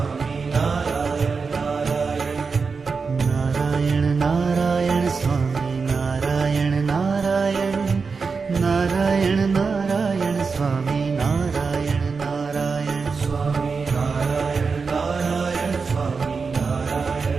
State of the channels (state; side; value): quieter; left; 4.9 dB